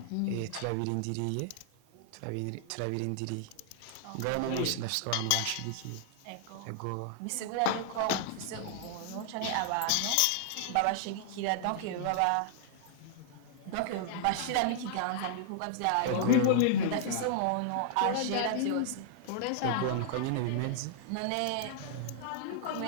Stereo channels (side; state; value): both; different; correlation -0.01